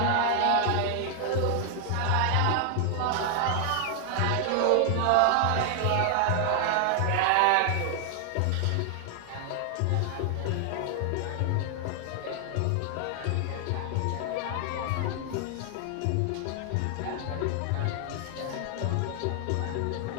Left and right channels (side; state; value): both; different; correlation 0.00